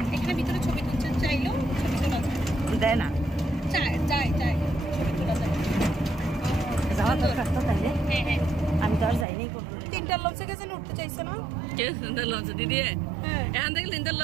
এখানে ভিতরে ছবি তুলতে চাইলো ছবি তোলা দেয় না চাই ছবি তোলা যায় যাওয়া দরকার তো তাইলে হ্যাঁ আমি তো আর যাইনি তিনটা লঞ্চে গেছে উঠতে চাইছে না কে তিনটা লঞ্চে দিদি হ্যাঁ এখান থেকে তিনটা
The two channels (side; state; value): left; drops out; at 9.2 s